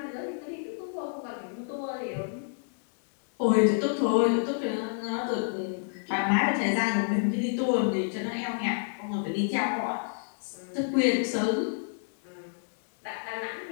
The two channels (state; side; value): silent; right; digital silence